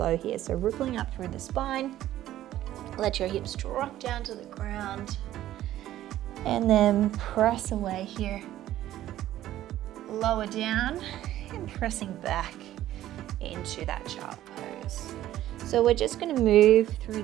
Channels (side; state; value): left; quieter; 13.4 dB